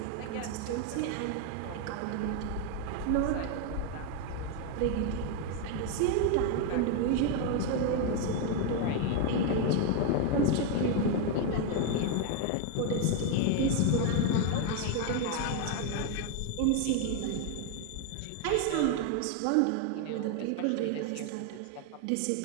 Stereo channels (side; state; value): both; different; correlation 0.01